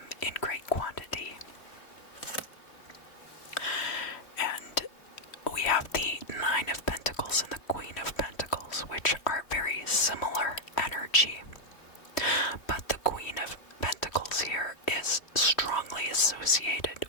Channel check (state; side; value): late; right; 3.1 ms